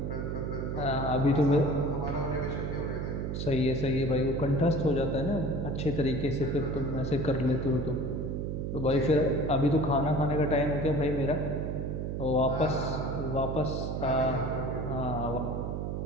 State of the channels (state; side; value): noise; right; hum, 3 dB below the sound